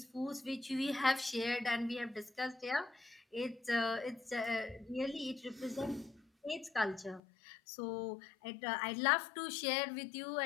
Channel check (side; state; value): right; drops out; at 7.2 s